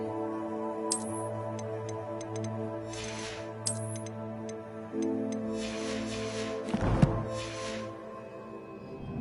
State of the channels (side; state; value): both; identical; correlation 1.00